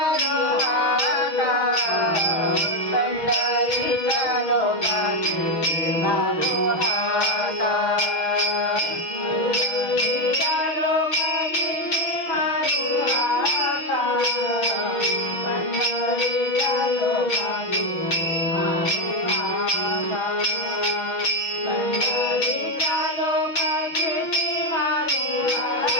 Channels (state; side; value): late; right; 6.3 ms